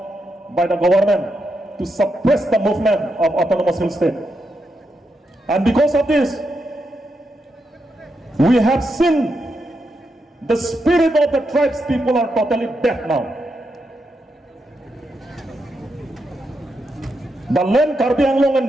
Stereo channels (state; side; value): normal; both; correlation 0.84